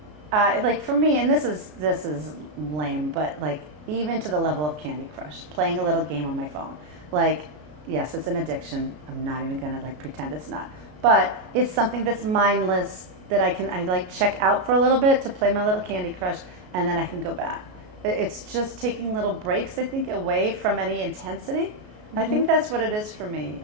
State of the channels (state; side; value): late; left; 33 ms